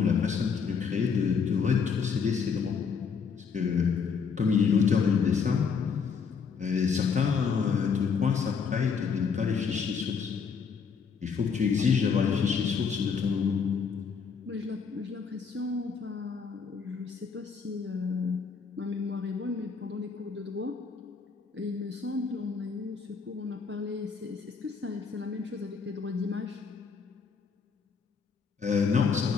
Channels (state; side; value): quieter; right; 5.9 dB